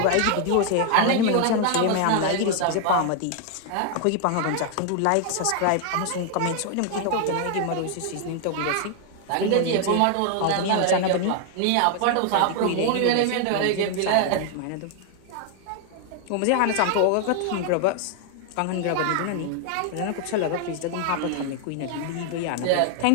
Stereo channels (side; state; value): both; different; correlation 0.00